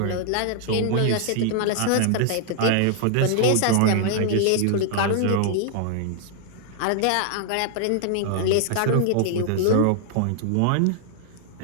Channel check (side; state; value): both; different; correlation -0.01